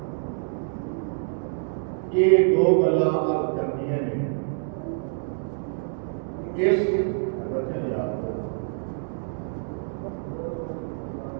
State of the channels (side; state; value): left; silent; digital silence